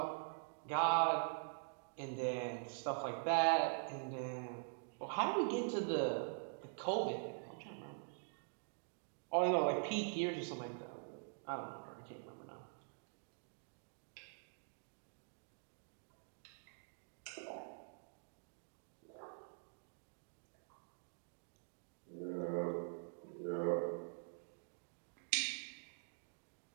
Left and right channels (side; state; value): left; silent; digital silence